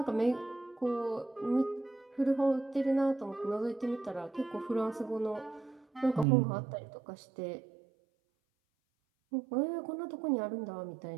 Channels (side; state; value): left; drops out; at 6.2 s